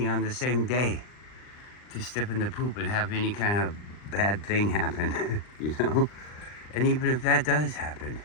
on the same day to step in the poop and have any kind of bad thing happen, And even if that does happen,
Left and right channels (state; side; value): late; right; 39 ms